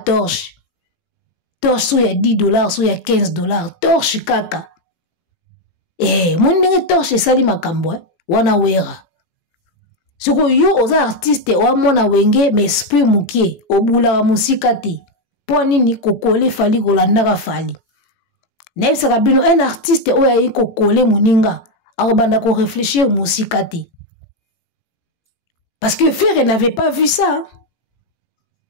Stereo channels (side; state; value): right; late; 18 ms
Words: so ya $10 so ya $15 torche kaka mwini ndenge torche esali makambo wana wera siko yo oza artiste oa mwana wenge ma esprit mukie obulaka musika te po nini kokole fali kolandaka fali Nebisaka bino un artiste oya yiko kole muninga akobanda ko réfléchir musika te. Parce que Ferry n'avait pas vu ça.